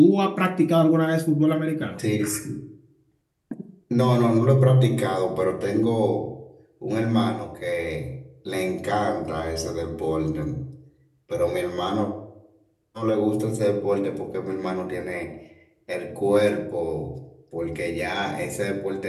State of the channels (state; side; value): identical; both; correlation 1.00